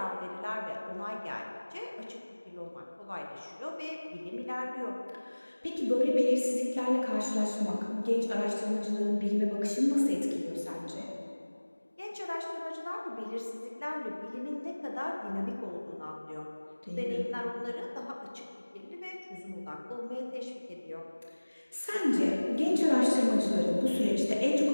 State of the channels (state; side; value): inverted; both; correlation -1.00